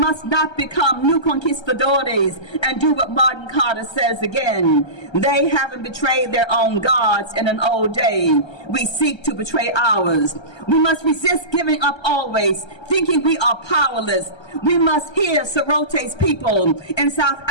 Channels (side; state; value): right; late; 1.3 ms